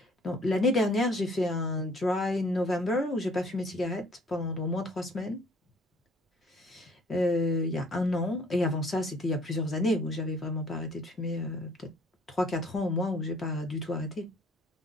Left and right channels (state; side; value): normal; both; correlation 0.57